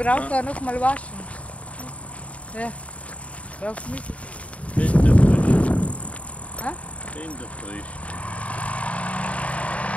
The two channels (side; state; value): right; late; 0.066 ms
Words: noch mal waschen. Ja. Brauchst du nicht? Kinderfrisch. Ha? Kinderfrisch.